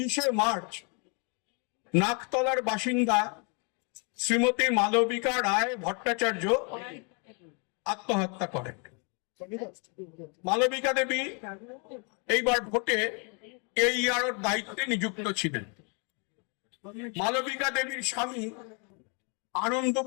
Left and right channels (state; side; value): quieter; right; 35.9 dB